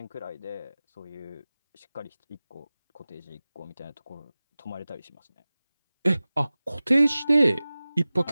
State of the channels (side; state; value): both; inverted; correlation -0.97